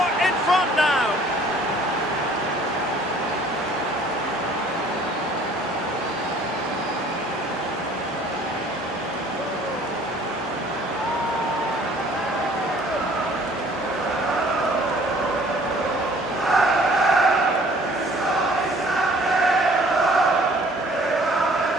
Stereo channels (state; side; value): normal; both; correlation 0.55